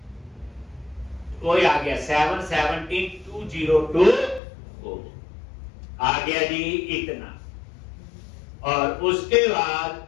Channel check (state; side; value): drops out; right; at 4.4 s